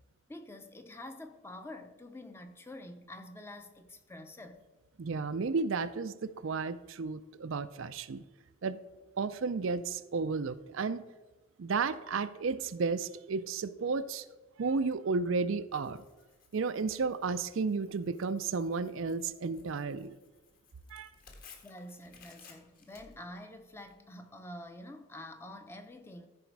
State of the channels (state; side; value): quieter; left; 4.0 dB